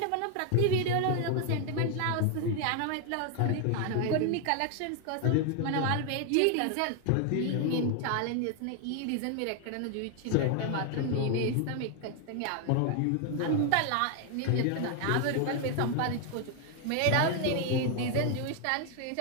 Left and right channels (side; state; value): both; different; correlation 0.00